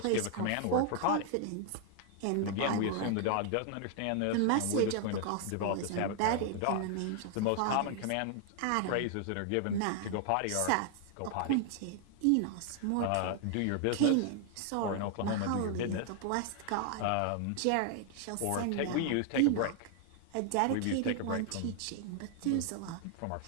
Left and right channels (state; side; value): different; both; correlation 0.00